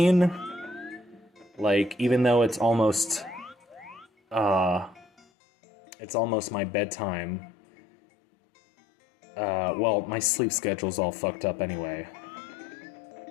Like, even though it's almost... It's almost my bedtime. Well, my sleep schedule's all fucked up anyway.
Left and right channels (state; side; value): drops out; right; at 5.2 s